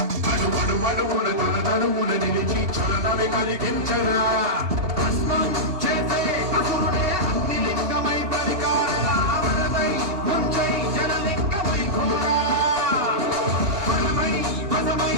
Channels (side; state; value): left; late; 2.9 ms